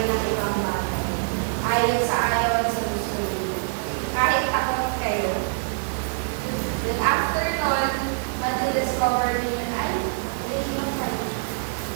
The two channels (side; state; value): left; silent; 56 dB below the other